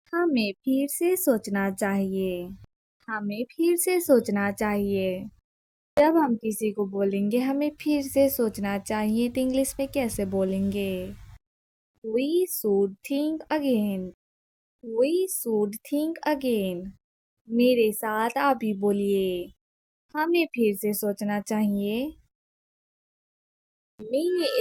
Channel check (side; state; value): both; identical; correlation 1.00